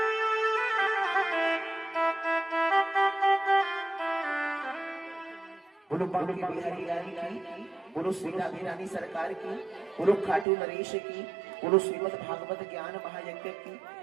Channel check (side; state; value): left; drops out; at 10.5 s